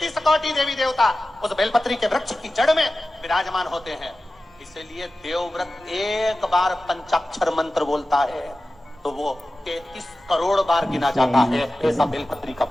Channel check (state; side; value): normal; both; correlation 0.95